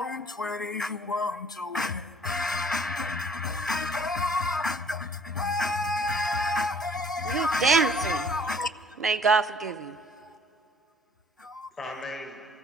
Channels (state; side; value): normal; both; correlation 0.56